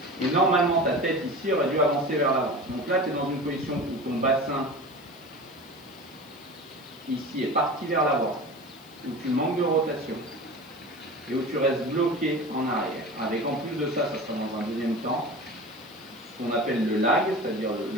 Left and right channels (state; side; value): noise; left; hiss, 26 dB below the sound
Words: Et normalement, ta tête ici aurait dû avancer vers l'avant. Donc là, tu es dans une position où ton bassin ici est parti vers l'avant, où tu manques de rotation et où tu restes bloqué en arrière. Avec en plus de ça, ça sera dans un deuxième temps, ce qu'on appelle le lag, c'est-à-dire